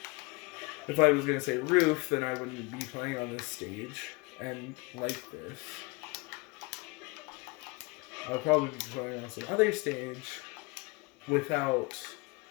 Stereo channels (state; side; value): quieter; right; 27.4 dB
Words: If I was going to say roof, then I wouldn't be playing on this stage. And like this. I'll probably be playing on some other stage without